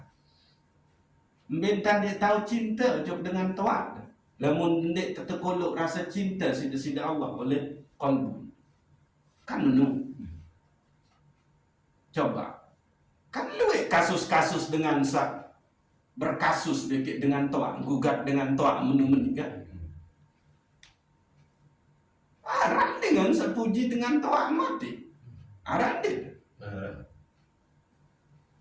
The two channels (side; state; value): both; identical; correlation 1.00